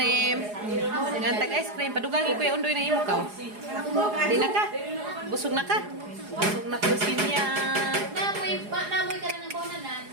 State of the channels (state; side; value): late; left; 4.8 ms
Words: Ngantag ice cream. Padugagi ko yung undoy na imo ka. Di na ka? Busog na ka? Busog na ko simya. Namoy ka na ng bonanan.